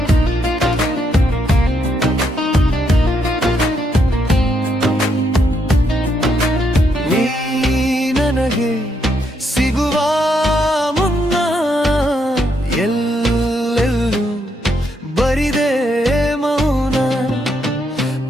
ನೀ ನನಗೆ ಸಿಗುವ ಮುನ್ನ ಎಲ್ಲೆಲ್ಲೂ ಬರಿದೆ ಮೌನ.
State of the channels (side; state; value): both; normal; correlation 0.76